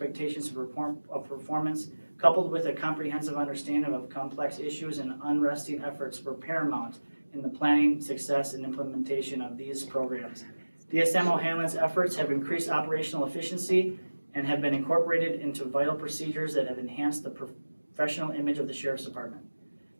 of performance, coupled with a comprehensive understanding of complex issues and unresting efforts, were paramount in the planning, success, and implementation of these programs. DSM O'Hanlon's efforts have increased operational efficiency and have been incorporated into vital procedures that have enhanced the professional image of the Sheriff's Department.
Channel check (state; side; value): inverted; both; correlation -1.00